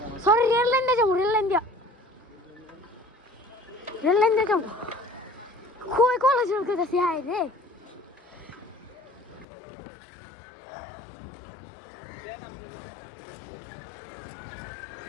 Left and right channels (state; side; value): drops out; right; at 9.5 s